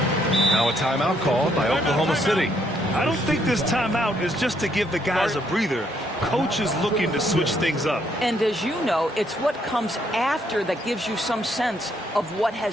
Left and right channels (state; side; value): normal; both; correlation 0.71